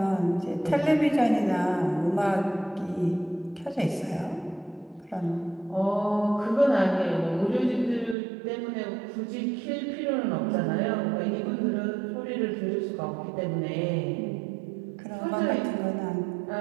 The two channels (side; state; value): left; drops out; at 8.2 s